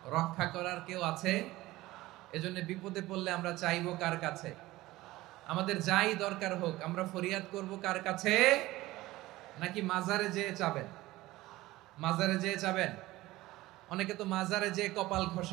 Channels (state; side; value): quieter; left; 18.0 dB